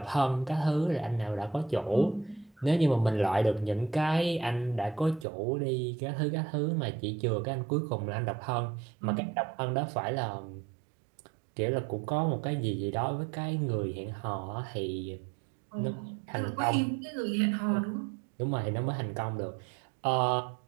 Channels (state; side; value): drops out; left; at 5.2 s